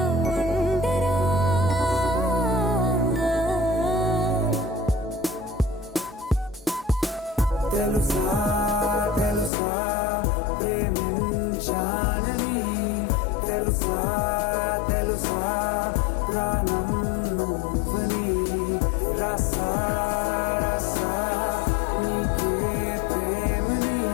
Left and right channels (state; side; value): drops out; right; at 9.5 s